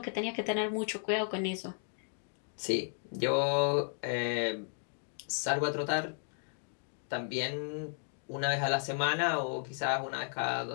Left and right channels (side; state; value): right; silent; 55 dB below the other